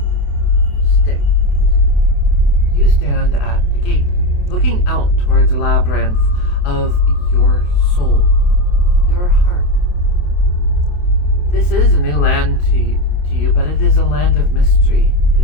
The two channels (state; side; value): late; right; 28 ms